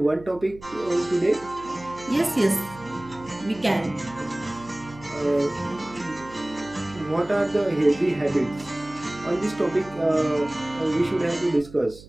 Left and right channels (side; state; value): right; noise; hum, 19 dB below the sound